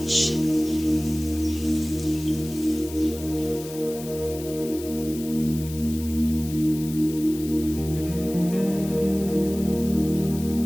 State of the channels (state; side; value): noise; left; hiss, 14 dB below the sound